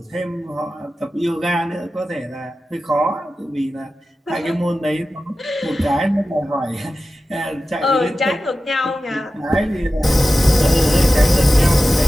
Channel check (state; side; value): normal; both; correlation 0.94